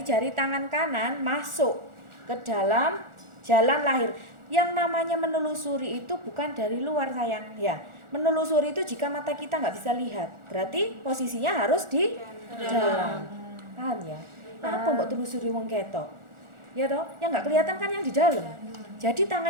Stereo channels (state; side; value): late; left; 1.4 ms